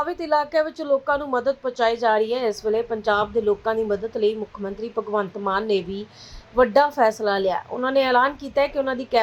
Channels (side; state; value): both; identical; correlation 1.00